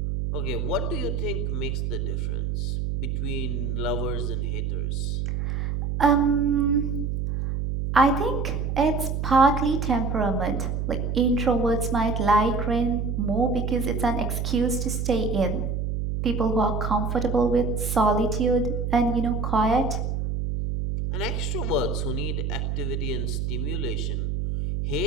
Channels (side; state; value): right; noise; hum, 1 dB below the sound